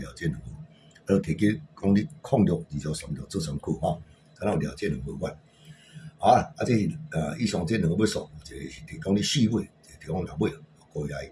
这2副。提供讲你06、2条、3条做参考吼，敢若有掠这2副款。好啊，这是以上这2个要素，一个是提供你试买，一个提供落尾，各位来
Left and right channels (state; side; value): identical; both; correlation 1.00